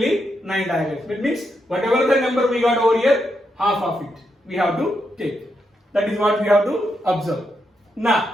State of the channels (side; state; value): both; normal; correlation 0.82